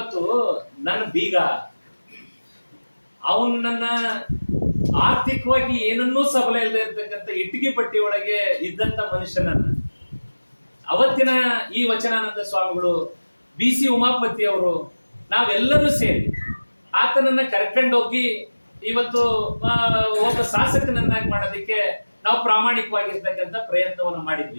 ನನ್ನ ಬೀಗ ಅವನು ನನ್ನ ಆರ್ಥಿಕವಾಗಿ ಏನನ್ನೂ ಸಬಲ ಇಲ್ಲದೆ ಇರ್ತಕ್ಕಂಥ ಇಟ್ಟಿಗೆ ಪಟ್ಟಿ ಒಳಗೆ ಇದ್ದಂತ ಮನುಷ್ಯನನ್ನ ಅವತ್ತಿನ ಈ ವಚನಾನಂದ ಸ್ವಾಮಿಗಳು, BC ಉಮಾಪತಿ ಅವರು, ನಾವೆಲ್ಲರೂ ಸೇರಿ ಆತನನ್ನ ಕರ್ಕೊಂಡೋಗಿ ಇವತ್ತು ಒಬ್ಬ ಶಾಸಕನನ್ನಾಗಿ ಮಾಡೋದಕ್ಕೆ ನಾವು ಪ್ರಾಮಾಣಿಕವಾಗಿರ್ತಕ್ಕಂಥ ಪ್ರಯತ್ನವನ್ನು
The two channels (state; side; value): inverted; both; correlation -1.00